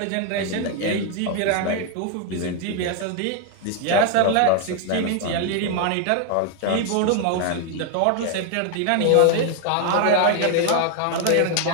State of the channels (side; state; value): both; different; correlation 0.01